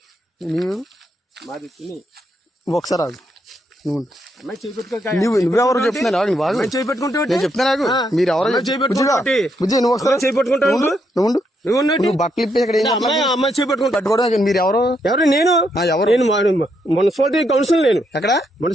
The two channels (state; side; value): normal; both; correlation 0.77